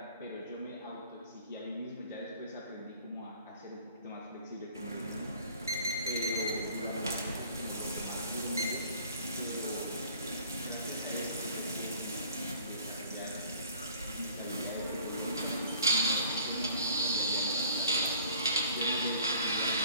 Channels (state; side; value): inverted; both; correlation -0.51